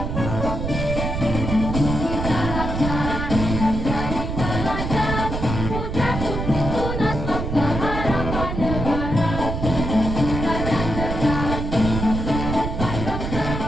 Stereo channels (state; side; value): noise; right; rumble, 3 dB below the sound